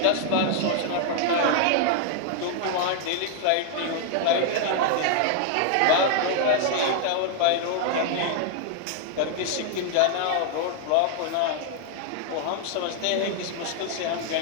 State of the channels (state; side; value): different; both; correlation 0.00